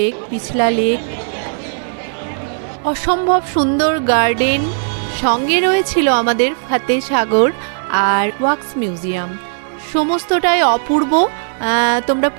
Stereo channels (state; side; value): silent; left; digital silence